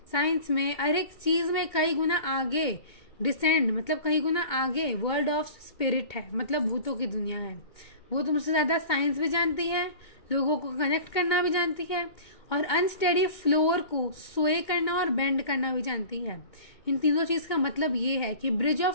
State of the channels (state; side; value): late; right; 2.2 ms